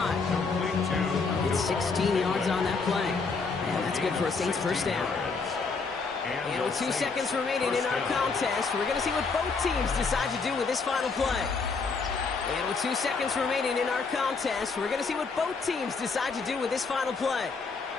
It's 16 yards on that play. And that's good for a Saints 1st down. And with 2 seconds remaining in our contest, we're going to see what both teams decide to do with this final play. And with 2 seconds remaining in our contest, we're going to see what both teams decide to do with this final play.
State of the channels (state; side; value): quieter; right; 4.6 dB